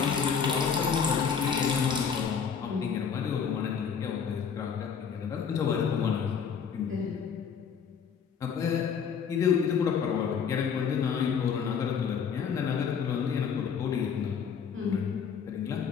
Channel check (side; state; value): right; quieter; 6.8 dB